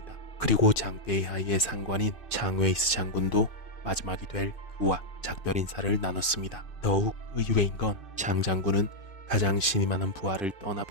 그리고 장베이하이의 상관인 장웨이스 장군도 마지막이 될 그와 작별 인사를 나눴습니다. 더욱 의외인 건 장 장군은 가장 신이 많은 부하를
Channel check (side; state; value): right; late; 2.6 ms